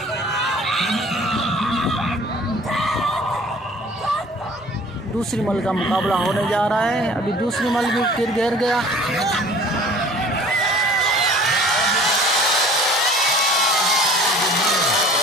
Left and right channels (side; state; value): both; normal; correlation 0.49